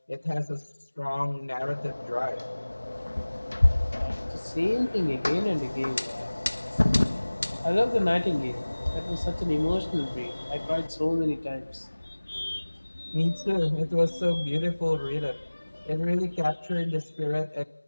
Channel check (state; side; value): inverted; both; correlation -1.00